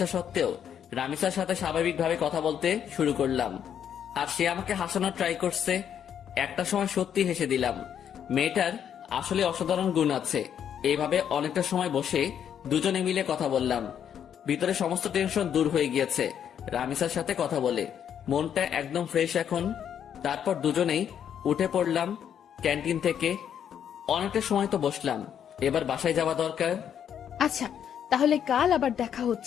সত্ত্বেও রামিসার সাথে স্বাভাবিকভাবে কথা বলতে শুরু করলাম, আর সে আমাকে হাসানোর ট্রাই করছে। একটা সময় সত্যি হেসে দিলাম। মেয়েটার আসলে অসাধারণ গুণ আছে। এইভাবে অনেকটা সময় বসে দুজনে মিলে কথা বললাম। ভিতরে সমস্ত টেনশন দূর হয়ে গিয়েছে রামিসার সাথে কথা বলে। মনটা একদম ফ্রেশ এখন। তারপর দুজনেই উঠে পড়লাম ক্যান্টিন থেকে। অনেকটা সময় তো বসলাম, এবার বাসায় যাওয়া দরকার। আচ্ছা, তাহলে কাল আবার দেখা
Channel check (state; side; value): quieter; right; 8.9 dB